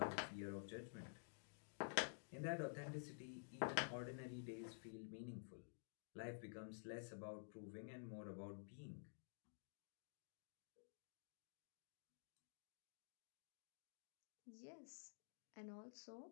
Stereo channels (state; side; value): silent; right; digital silence